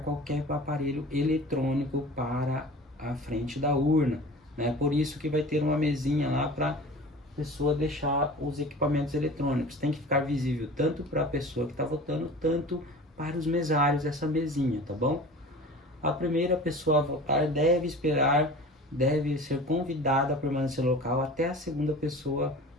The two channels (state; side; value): normal; both; correlation 0.39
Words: qualquer aparelho eletrônico para a frente da urna, né? Por isso que vai ter uma mesinha lá para a pessoa deixar os equipamentos eletrônicos. Tem que ficar visível tanto para a pessoa que está votando, tanto para os mesários essa mesinha, tá bom? A primeira pessoa a votar deve ser convidada a permanecer no local até a segunda pessoa